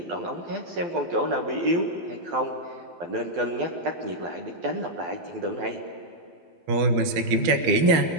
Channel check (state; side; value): late; left; 12 ms